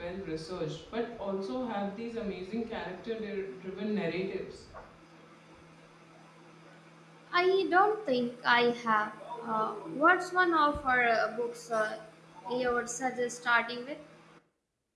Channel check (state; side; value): identical; both; correlation 1.00